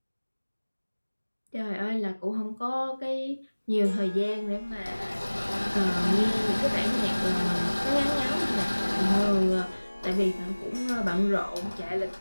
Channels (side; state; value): both; inverted; correlation -1.00